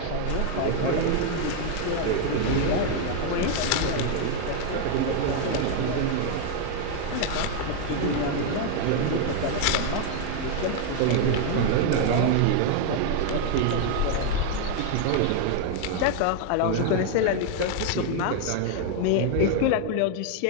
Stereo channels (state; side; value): different; both; correlation 0.00